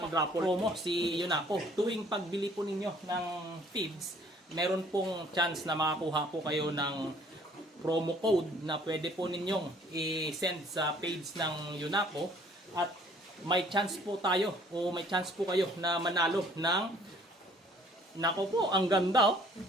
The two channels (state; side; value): normal; both; correlation 0.58